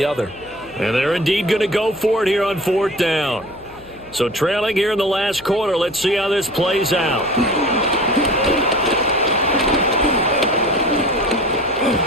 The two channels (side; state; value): left; noise; hum, 23 dB below the sound